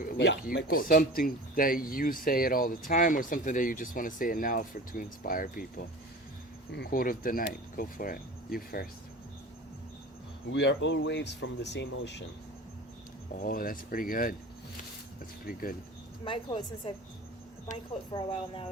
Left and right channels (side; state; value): both; normal; correlation 0.37